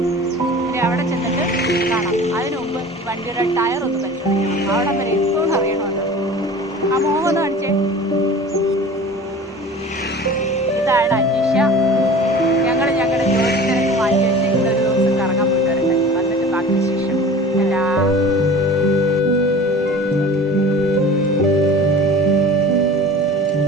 ഇനി അവിടെ ചെന്നിട്ട് കാണാം. അതിനു മുമ്പ് വണ്ടിയുടെ ടയർ ഒന്ന് പരിശോധിക്കണം. അവിടെ വരെ എത്തുമെന്ന് അറിയണമല്ലോ. ആ മോഹം കാണിച്ചേ. ഇതാണ് അനീഷ. ഞങ്ങളുടെ ജോലി തിരക്ക് മാറ്റി വെച്ച് ഇന്നൊരു ദിവസം കറങ്ങാൻ പോയി വരട്ടെ. വന്നിട്ട് ബാക്കി ശേഷം എല്ലാ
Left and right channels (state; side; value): normal; both; correlation 0.40